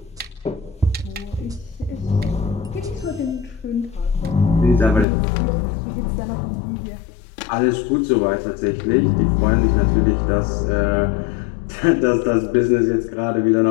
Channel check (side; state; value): right; drops out; at 5.1 s